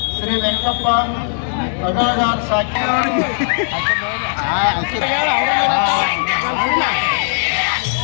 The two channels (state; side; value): silent; right; 62 dB below the other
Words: ಶ್ರೀ ವೆಂಕಪ್ಪ ಅಗಲಗಾರ್ ಸಾಕಿ